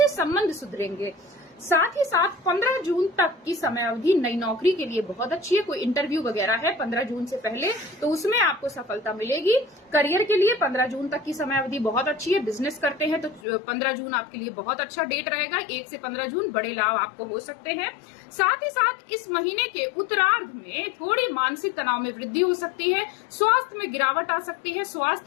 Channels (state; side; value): drops out; right; at 13.4 s